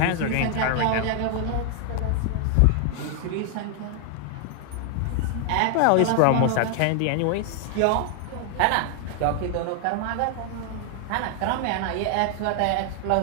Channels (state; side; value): different; both; correlation 0.00